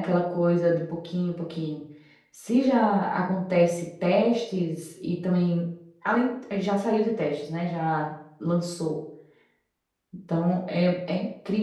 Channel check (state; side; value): identical; both; correlation 1.00